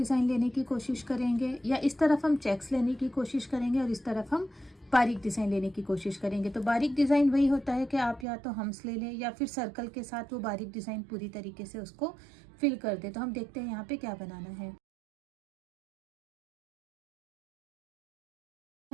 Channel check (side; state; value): left; drops out; at 8.2 s